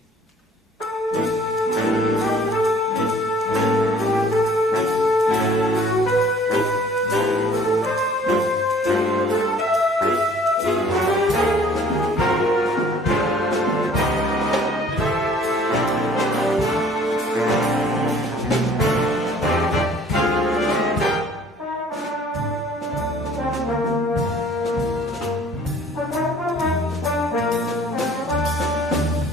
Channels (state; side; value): normal; both; correlation 0.54